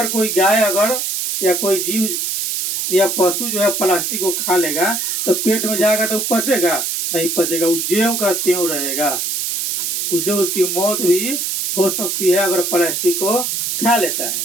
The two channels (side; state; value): right; noise; hiss, 1 dB below the sound